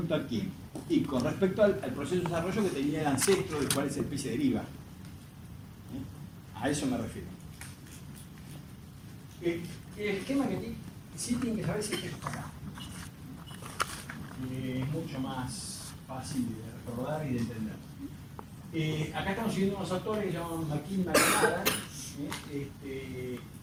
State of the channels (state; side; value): identical; both; correlation 1.00